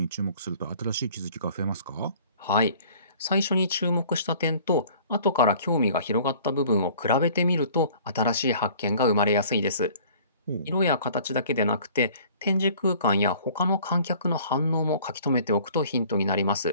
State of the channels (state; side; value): inverted; both; correlation -0.51